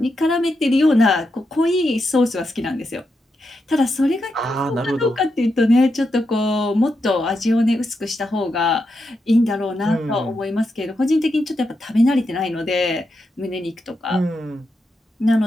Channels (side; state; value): both; normal; correlation 0.85